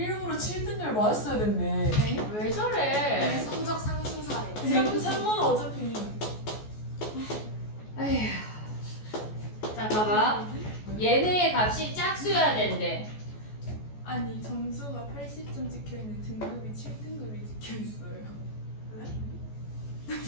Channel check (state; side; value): late; right; 14 ms